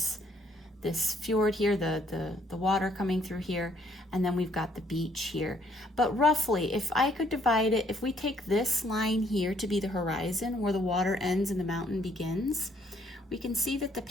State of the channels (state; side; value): normal; both; correlation 0.66